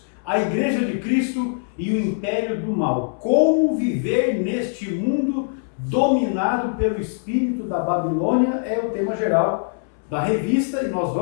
a Igreja de Cristo e o Império do Mal. Como viver neste mundo dominado pelo espírito da Babilônia é o tema geral da revista e nós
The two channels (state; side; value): silent; right; 64 dB below the other